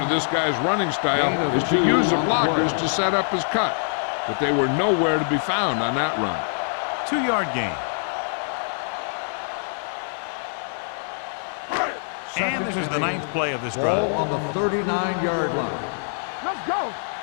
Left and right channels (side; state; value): right; silent; digital silence